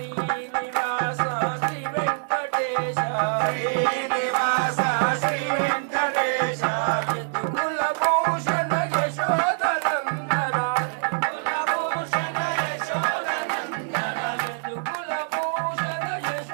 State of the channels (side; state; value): left; silent; digital silence